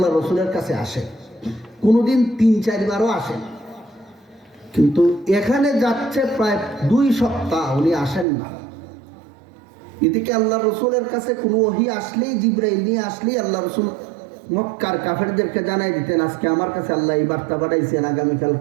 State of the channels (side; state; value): left; drops out; at 8.2 s